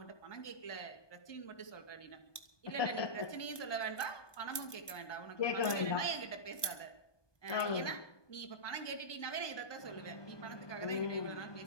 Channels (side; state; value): right; late; 1.2 ms